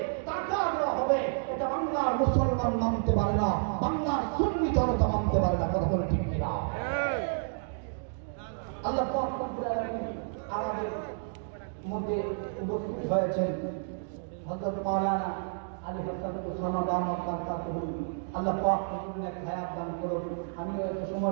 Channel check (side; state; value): left; silent; digital silence